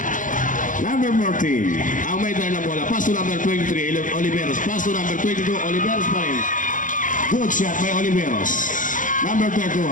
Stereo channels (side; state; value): right; late; 0.38 ms